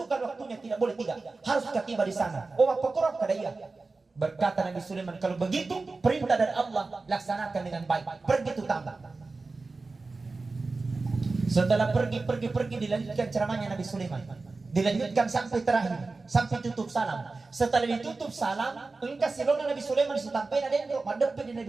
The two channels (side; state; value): left; quieter; 3.7 dB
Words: waktunya, tidak boleh tidak. Harus tiba di sana. Oh, apa korok kada iya? Berkata Nabi Sulaiman, kalau begitu perintah dari Allah laksanakan dengan baik. Pergi itu tambah. Setelah pergi dilanjutkan ceramahnya Nabi Sulaiman. Dilanjutkan sampai terakhir, sampai tutup salam. Setelah ditutup salam, engkau silona Nabi Sulaiman sampai ada yang madep di